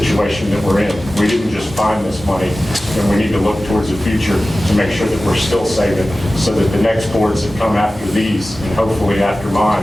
that we're in. We didn't just find this money, and we need to look towards the future to make sure that we're still saving so that the next boards that come after these, and hopefully after mine,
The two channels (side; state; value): both; normal; correlation 0.96